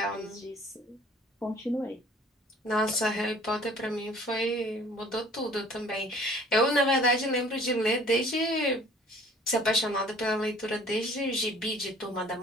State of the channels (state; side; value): normal; both; correlation 0.52